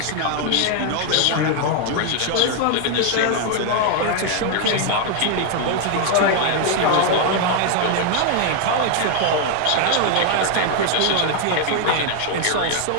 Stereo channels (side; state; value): both; different; correlation 0.00